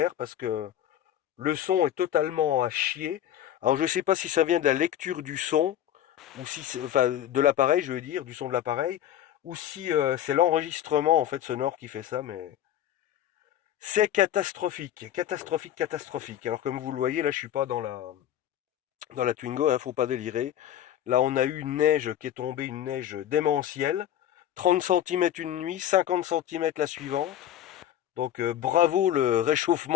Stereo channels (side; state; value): right; quieter; 11.3 dB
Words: parce que le son est totalement à chier. Alors je sais pas si ça vient de la lecture du son ou si enfin de l'appareil, je veux dire, du son de l'appareil, ou si c'est l'enregistrement en fait sonore qui fait ça, mais c'est catastrophique, catastrophique, catastrophique. Alors comme vous le voyez, là je suis pas dans la Twingo, hein, faut pas délirer. Là on a eu une neige qui est tombée, une neige démentielle. 30 centimètres une nuit, 50 centimètres la suivante. Donc bravo le